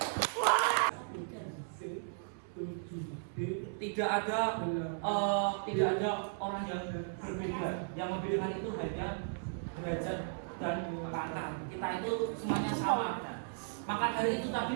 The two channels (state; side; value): silent; left; 54 dB below the other